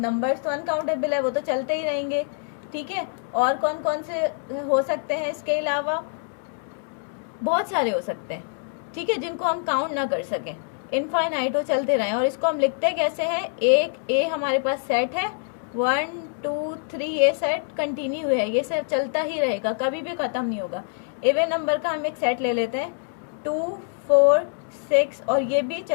नंबर्स तो अनकाउंटेबल है, वो तो चलते ही रहेंगे। ठीक है। और कौन कौन से हो सकते हैं इसके अलावा? बहुत सारे हो सकते हैं, ठीक है, जिनको हम काउंट ना कर सकें। इनफाइनाइट हो, चलते रहें। और इसको हम लिखते कैसे हैं? एक ए हमारे पास सेट है, 1 2 3, ये सेट कंटिन्यू है, ये सब चलता ही रहेगा, कभी भी खत्म नहीं होगा। इवन नंबर का हम एक सेट ले लेते हैं 2 4 6, और ये भी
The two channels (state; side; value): silent; right; 62 dB below the other